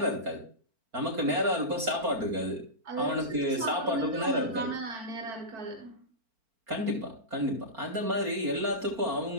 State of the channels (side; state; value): left; late; 4.4 ms